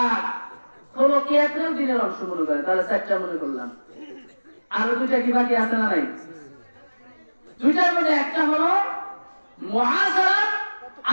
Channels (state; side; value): inverted; both; correlation -1.00